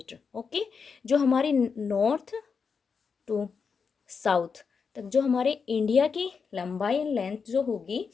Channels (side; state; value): right; quieter; 5.7 dB